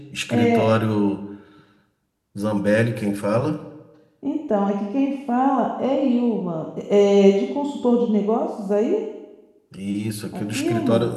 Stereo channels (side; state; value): both; identical; correlation 1.00